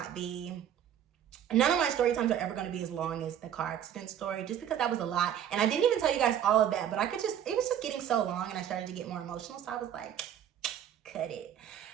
be. None of my story times are ever going to be as long as the car accident story, just because that was a lot. And I didn't even tell you guys all of that, but it was just getting so long and I started to get more emotional. So I was like, cut it.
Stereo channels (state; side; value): quieter; left; 9.9 dB